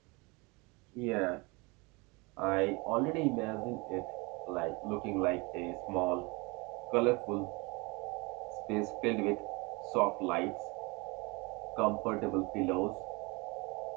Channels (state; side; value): quieter; left; 27.1 dB